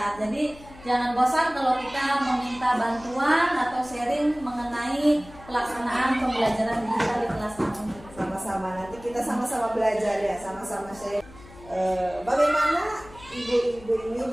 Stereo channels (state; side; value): noise; left; hum, 20 dB below the sound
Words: jadi jangan bosan kalau kita meminta bantuan atau sharing mengenai pelaksanaan pembelajaran digital di kelas kami. Sama-sama, nanti kita sama-sama belajar ya, sama-sama share. Bagaimana ibu-ibu ini